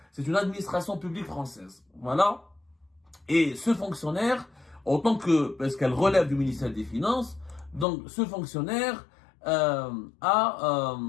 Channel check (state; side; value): drops out; right; at 7.9 s